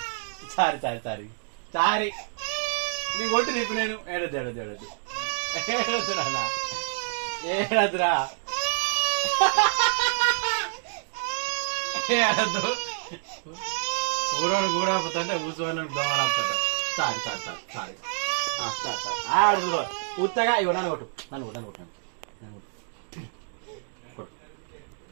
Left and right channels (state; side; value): silent; left; digital silence